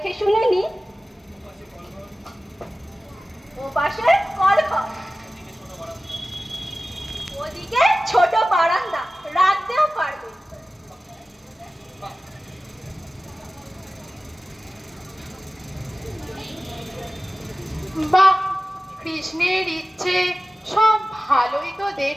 শুনে নি। ও পাশে কলঘর, ওদিকে ছোট বারান্দা, রাখতেও পারবে। বাহ, কৃষ্ণের ইচ্ছে সব ভালোই তো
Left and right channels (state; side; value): normal; both; correlation 0.96